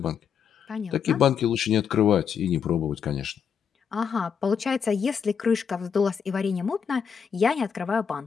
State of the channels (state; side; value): quieter; right; 7.1 dB